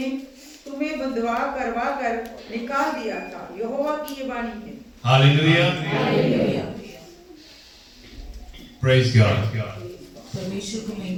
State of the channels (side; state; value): both; identical; correlation 1.00